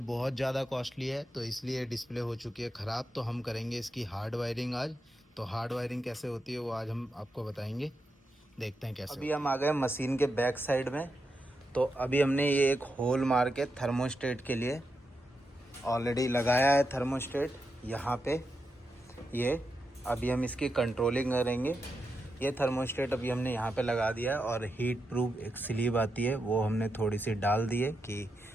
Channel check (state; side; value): normal; both; correlation 0.86